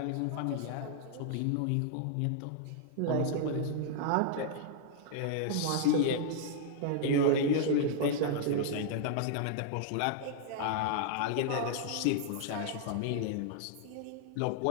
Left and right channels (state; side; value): different; both; correlation -0.01